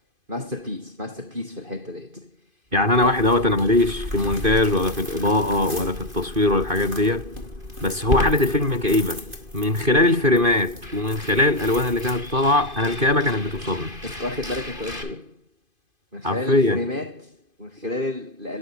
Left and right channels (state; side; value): late; left; 2.5 ms